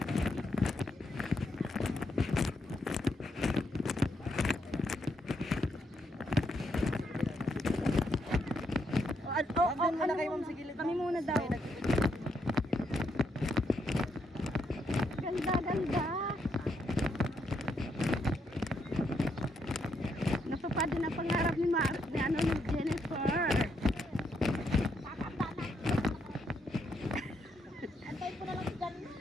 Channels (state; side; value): normal; both; correlation 0.77